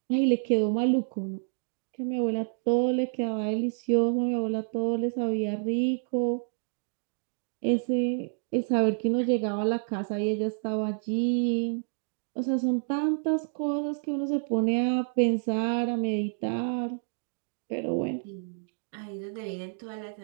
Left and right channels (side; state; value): left; silent; digital silence